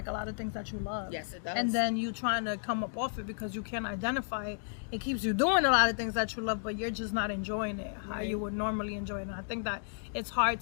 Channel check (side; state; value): right; silent; digital silence